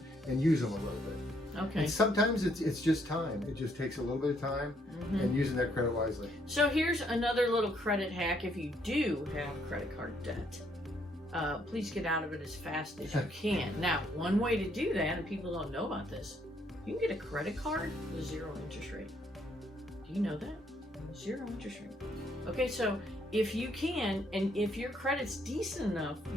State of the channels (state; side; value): normal; both; correlation 0.70